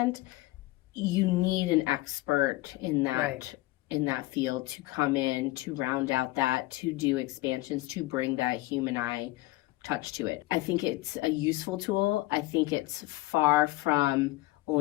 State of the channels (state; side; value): quieter; right; 18.8 dB